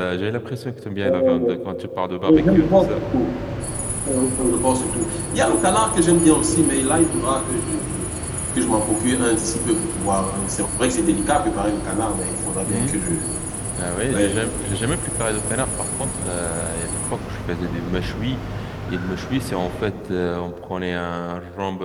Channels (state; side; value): identical; both; correlation 1.00